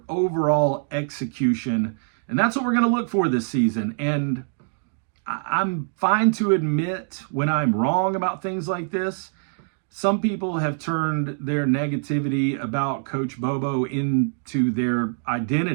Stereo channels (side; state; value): left; silent; digital silence